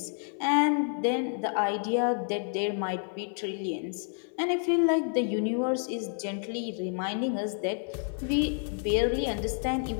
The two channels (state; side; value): silent; right; 58 dB below the other